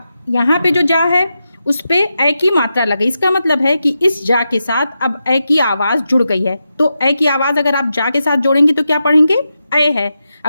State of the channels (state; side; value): inverted; both; correlation -0.88